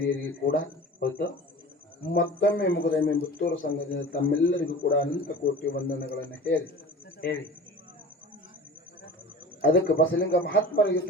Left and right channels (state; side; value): normal; both; correlation 0.38